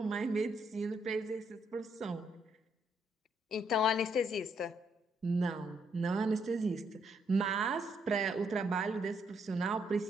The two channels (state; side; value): normal; both; correlation 0.73